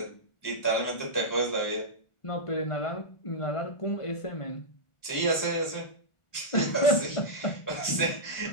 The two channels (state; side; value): late; right; 1.4 ms